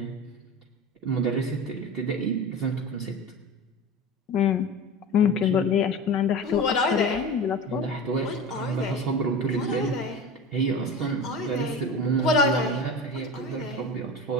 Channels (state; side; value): normal; both; correlation 0.31